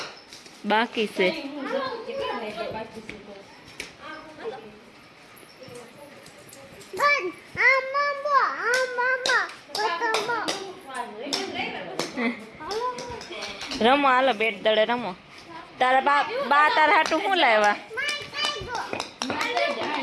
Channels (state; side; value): identical; both; correlation 1.00